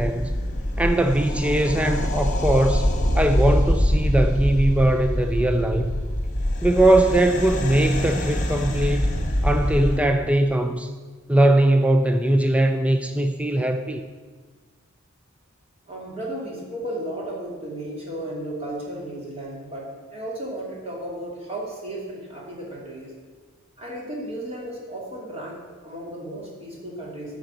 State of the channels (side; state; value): both; normal; correlation 0.87